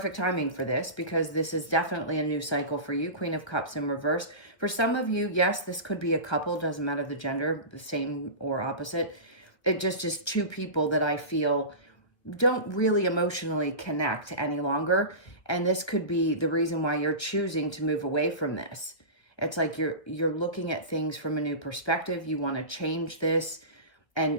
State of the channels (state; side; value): late; right; 1.5 ms